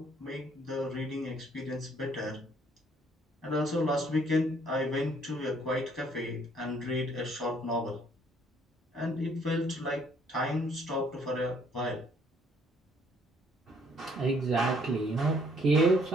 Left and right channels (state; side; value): normal; both; correlation 0.63